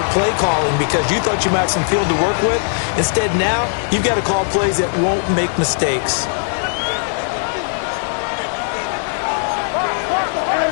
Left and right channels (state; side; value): silent; right; 63 dB below the other